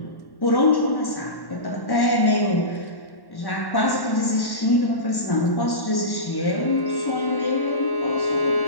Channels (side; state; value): right; late; 1.1 ms